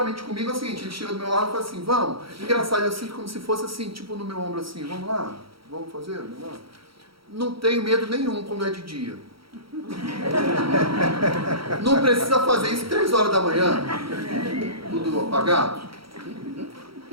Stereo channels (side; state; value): left; late; 0.75 ms